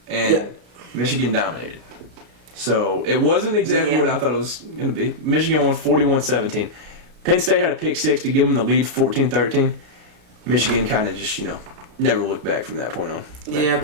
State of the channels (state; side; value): late; left; 33 ms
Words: And Yeah. Michigan dominated. So, it wasn't exactly what I thought it was going to be. Michigan won 41-17. Penn State had a pick six to give them the lead 14-13. Michigan kind of just, never looked back from that point on. But Yeah,